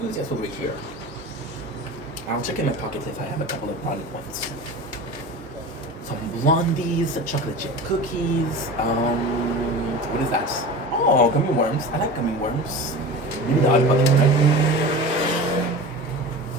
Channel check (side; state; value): both; normal; correlation 0.33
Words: over here. I'll check in my pockets if I have a couple of brownie points. Some blondies, chocolate chip cookies. What is that? Oh, gummy worms. I like gummy worms. Maybe the odd bucket, right?